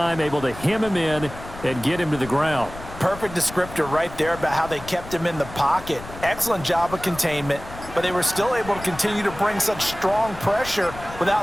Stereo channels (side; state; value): left; noise; rumble, 14 dB below the sound